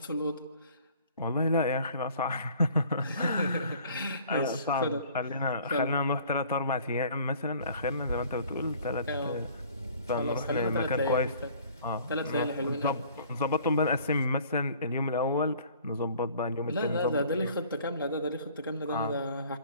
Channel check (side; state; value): both; inverted; correlation -0.53